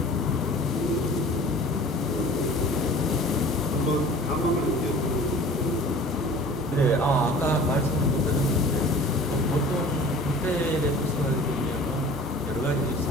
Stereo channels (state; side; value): normal; both; correlation 0.44